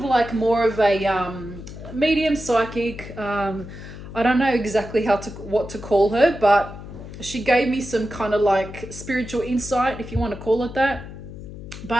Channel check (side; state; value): left; noise; hum, 13 dB below the sound